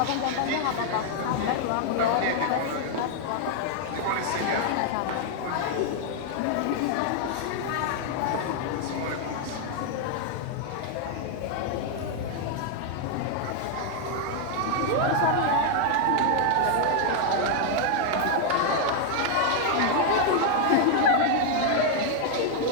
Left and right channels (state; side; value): different; both; correlation 0.00